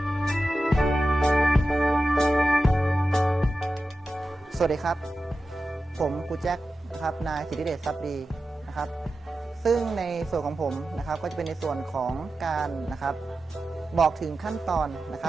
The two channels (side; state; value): both; normal; correlation 0.93